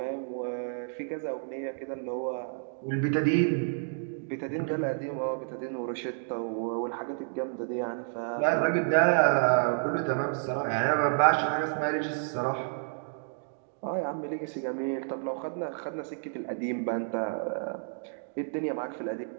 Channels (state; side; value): silent; left; digital silence